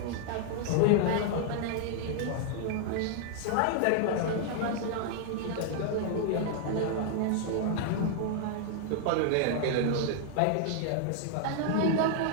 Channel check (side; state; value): both; different; correlation -0.01